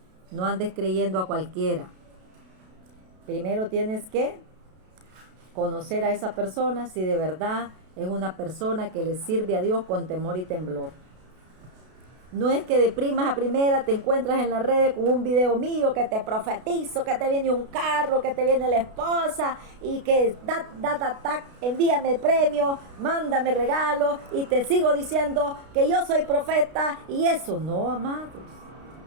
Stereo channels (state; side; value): late; left; 32 ms